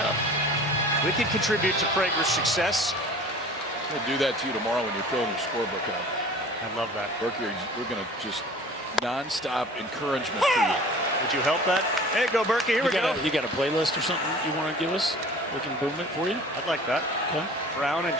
We can contribute to Prager's success. We'll do that to you tomorrow when you're filling your scorebook out. I love that. Berkey, we're going to just non-stop encouragement for you. Would you help that? There you go, Berkey. Here we go. You got a playlist or something you want to give us? We can boom it for you. I'd like that. Okay. Brown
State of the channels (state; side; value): normal; both; correlation 0.44